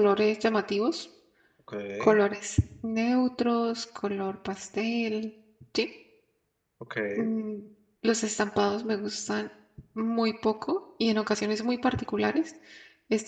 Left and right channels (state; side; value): identical; both; correlation 1.00